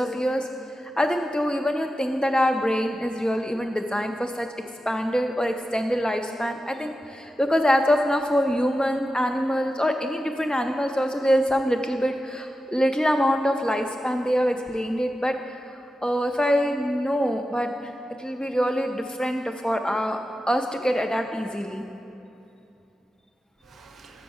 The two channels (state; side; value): normal; both; correlation 0.92